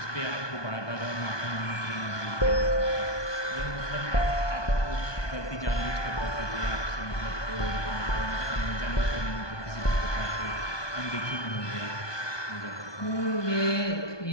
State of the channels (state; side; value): late; right; 1.2 ms